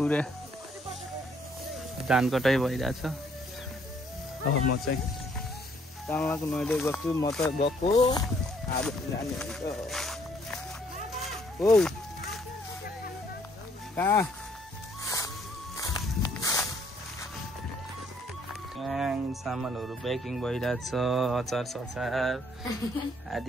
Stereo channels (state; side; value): normal; both; correlation 0.65